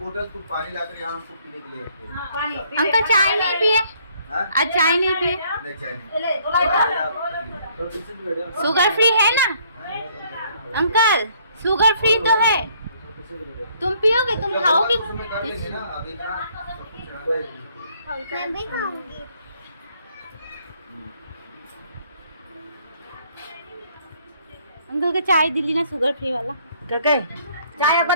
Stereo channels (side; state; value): both; inverted; correlation -0.64